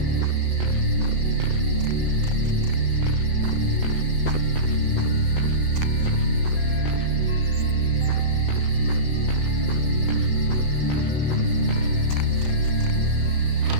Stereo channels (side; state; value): left; late; 7.8 ms